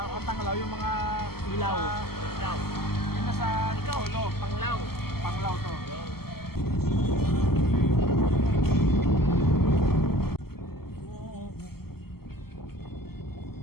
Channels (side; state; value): right; late; 0.95 ms